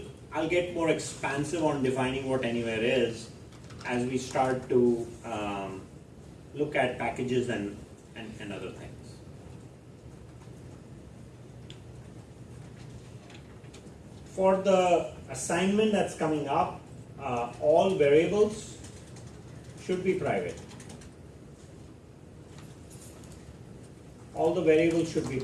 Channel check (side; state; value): both; identical; correlation 1.00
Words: I'll get more expansive on defining what anywhere is as we start to look at packages and other things. For the assignment that's coming up, all variables should be private. All the variables should be